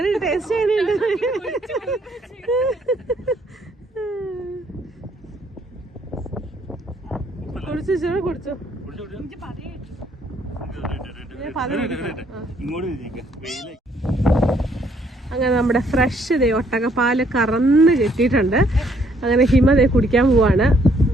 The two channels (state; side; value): normal; both; correlation 0.67